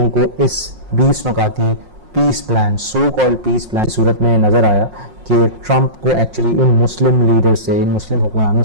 کو اس 20 نکاتی peace plan, so called peace plan کی صورت میں نظر آیا کہ ٹرمپ کو ایکچولی ان مسلم لیڈر سے, ان مسلم حکمرانوں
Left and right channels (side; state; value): left; late; 5.5 ms